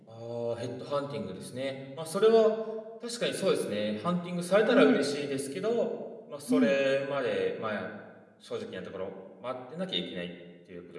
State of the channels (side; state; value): both; identical; correlation 1.00